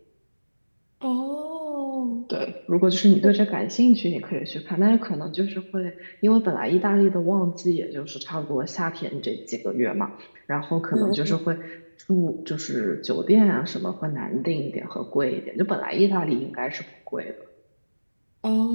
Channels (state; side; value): inverted; both; correlation -1.00